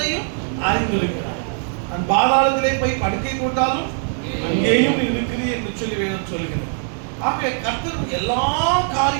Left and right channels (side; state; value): left; silent; 56 dB below the other